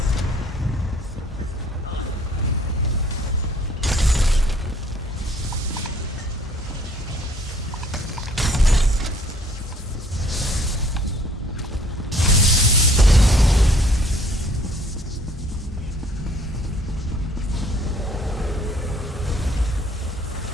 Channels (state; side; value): normal; both; correlation 0.59